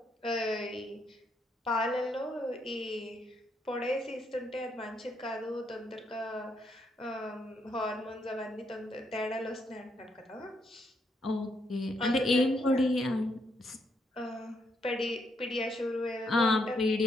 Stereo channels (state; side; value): normal; both; correlation 0.76